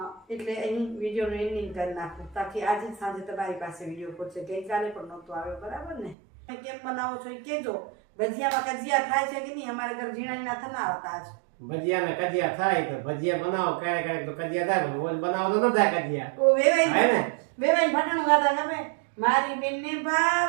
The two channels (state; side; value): drops out; left; at 6.2 s